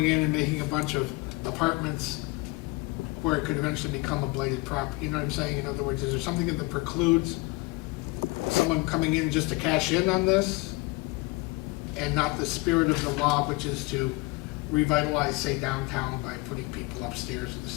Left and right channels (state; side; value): quieter; right; 23.9 dB